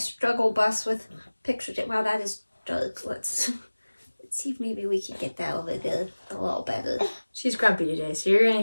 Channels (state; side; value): inverted; both; correlation -1.00